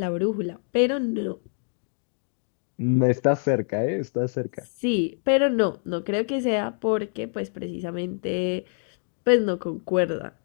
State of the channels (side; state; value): right; silent; 55 dB below the other